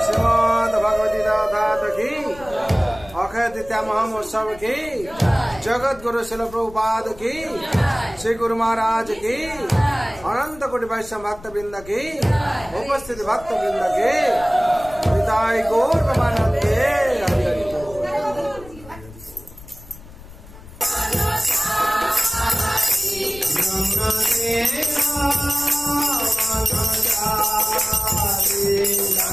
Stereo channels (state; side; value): noise; left; rumble, 19 dB below the sound